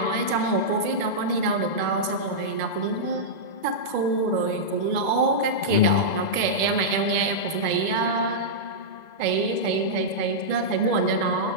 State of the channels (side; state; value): right; late; 2.0 ms